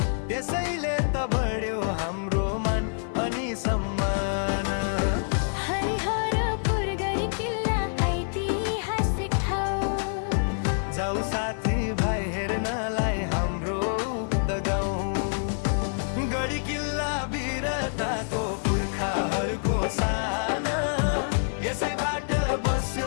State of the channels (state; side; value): silent; right; digital silence